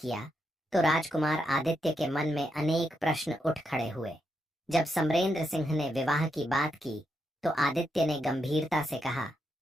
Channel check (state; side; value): normal; both; correlation 0.82